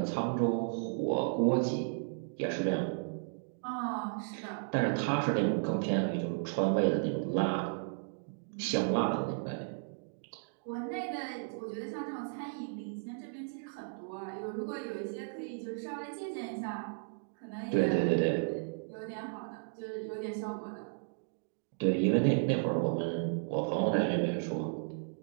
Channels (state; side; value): silent; left; digital silence